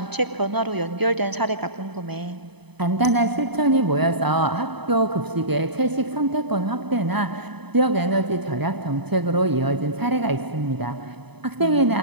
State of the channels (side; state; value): left; late; 0.98 ms